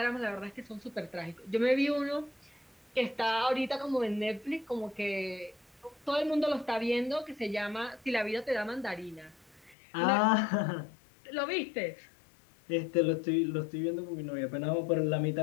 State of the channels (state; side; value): drops out; right; at 9.8 s